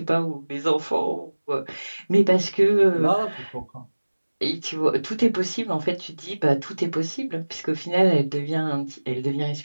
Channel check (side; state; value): both; inverted; correlation -1.00